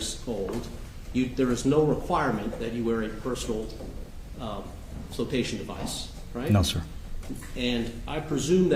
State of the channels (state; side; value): identical; both; correlation 1.00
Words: old, there is no requirement that you wear a personal flotation device, right? No, sir. And I presume